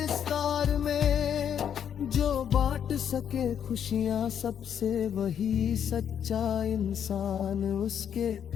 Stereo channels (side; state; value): right; quieter; 8.7 dB